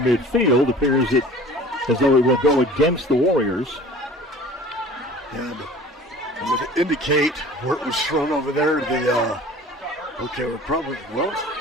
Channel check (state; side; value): normal; both; correlation 0.45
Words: appears it as though it will go against the Warriors. And it would indicate where it was thrown over there. Okay, we're probably, well,